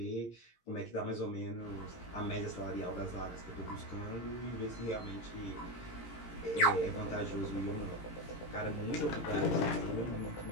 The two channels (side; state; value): right; late; 17 ms